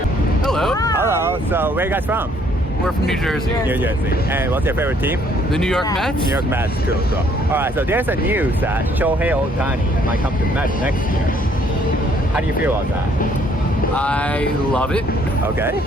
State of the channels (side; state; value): both; normal; correlation 0.64